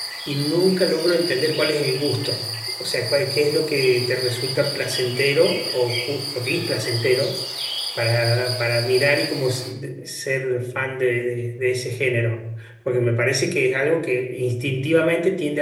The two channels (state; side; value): identical; both; correlation 1.00